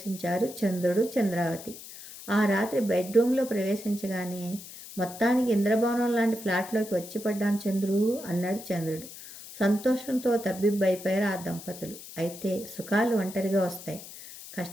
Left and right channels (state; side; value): noise; left; hiss, 14 dB below the sound